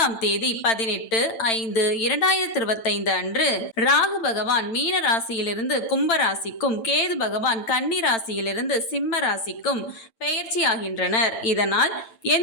தேதி 18/5/2025 அன்று ராகு பகவான் மீன ராசியிலிருந்து கும்ப ராசிக்கும், கேது பகவான் கன்னி ராசியிலிருந்து சிம்ம ராசிக்கும் பெயர்ச்சியாகின்றனர். இதனால்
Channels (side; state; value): right; late; 8.9 ms